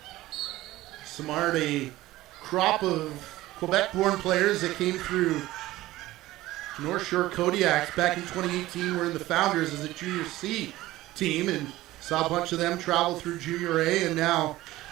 Samard, a crop of Quebec-born players that came through North Shore Kodiaks back in 2018 were in the Founders as a Junior C team, and saw a bunch of them travel through Junior A and now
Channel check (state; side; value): quieter; left; 16.9 dB